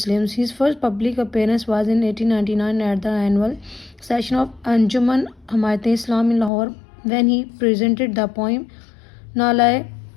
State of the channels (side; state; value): right; drops out; at 6.5 s